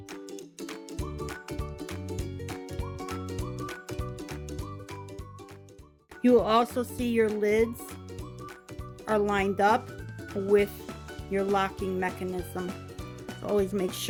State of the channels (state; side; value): identical; both; correlation 1.00